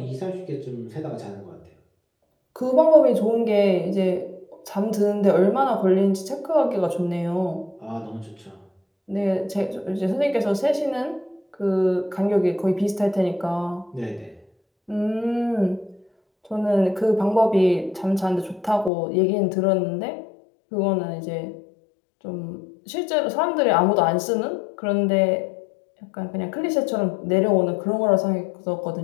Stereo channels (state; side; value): drops out; right; at 18.9 s